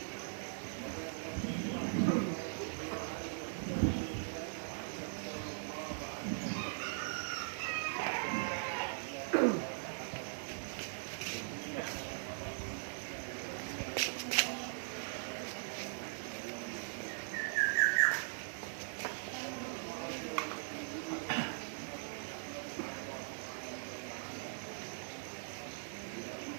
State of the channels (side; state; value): left; silent; digital silence